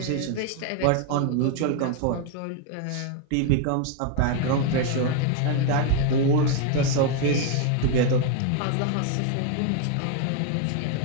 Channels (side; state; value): both; different; correlation 0.01